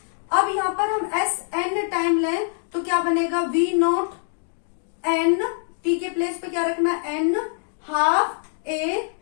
अब यहाँ पर हम sn टाइम लें तो क्या बनेगा, वी नॉट n, t के प्लेस पे क्या रखना, n half a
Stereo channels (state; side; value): silent; right; digital silence